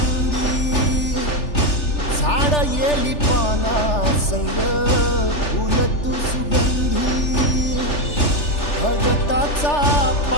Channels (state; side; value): late; right; 3.4 ms